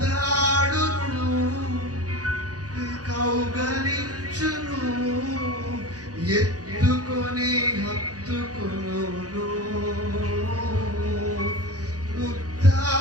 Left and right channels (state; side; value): late; left; 0.68 ms